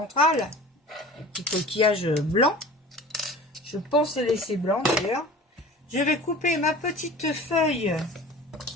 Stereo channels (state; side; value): normal; both; correlation 0.40